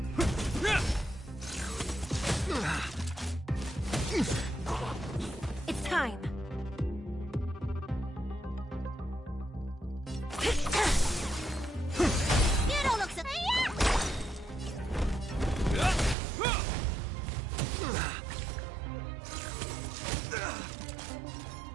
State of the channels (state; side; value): drops out; left; at 16.2 s